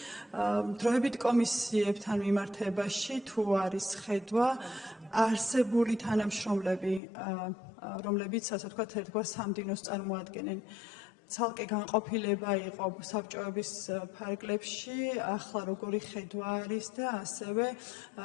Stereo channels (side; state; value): right; drops out; at 7.0 s